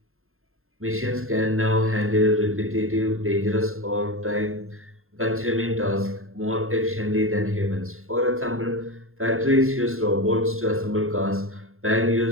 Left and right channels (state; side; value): late; left; 0.61 ms